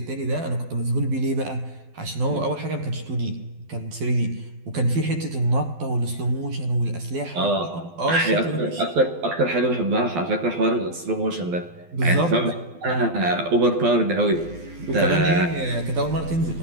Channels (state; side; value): late; left; 12 ms